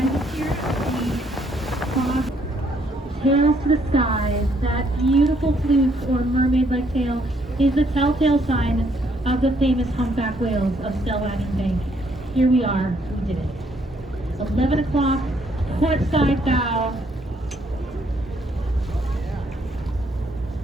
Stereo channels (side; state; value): both; normal; correlation 0.69